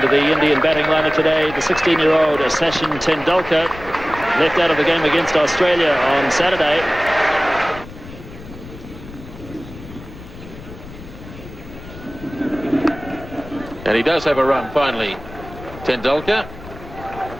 the Indian batting lineup today, the 16-year-old Sachin Tendulkar, left out of the game against Australia on Saturday. And he does have a run finally, Tendulkar,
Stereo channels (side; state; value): left; noise; rumble, 15 dB below the sound